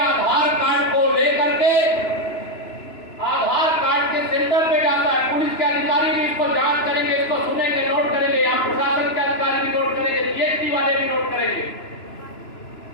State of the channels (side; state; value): right; late; 2.9 ms